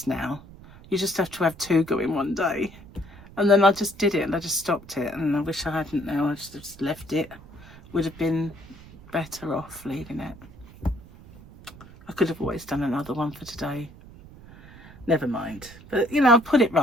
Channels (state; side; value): noise; right; rumble, 20 dB below the sound